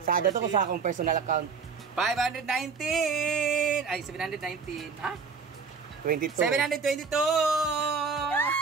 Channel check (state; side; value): quieter; left; 5.3 dB